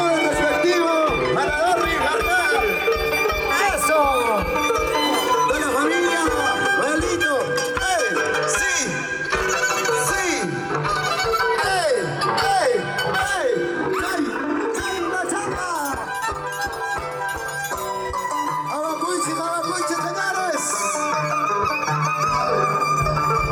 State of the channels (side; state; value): both; identical; correlation 1.00